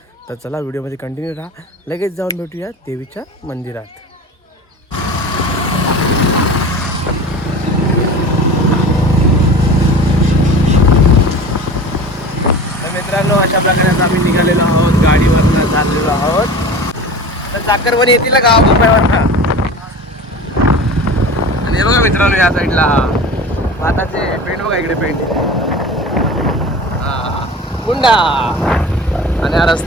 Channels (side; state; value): both; normal; correlation 0.35